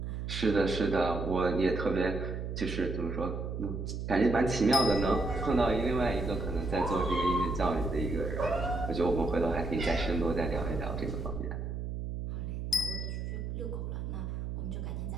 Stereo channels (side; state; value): right; noise; hum, 4 dB below the sound